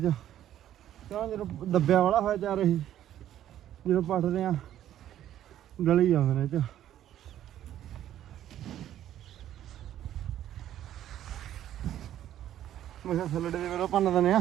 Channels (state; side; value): quieter; left; 11.7 dB